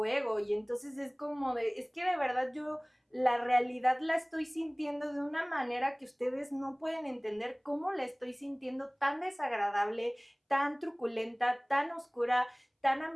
y entonces es como es que de verdad yo la realidad la estoy sintiendo de una manera que ustedes no pueden entender cómo la estoy sintiendo, tan desagradable, tan truculenta, tan oscura, tan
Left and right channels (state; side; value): identical; both; correlation 1.00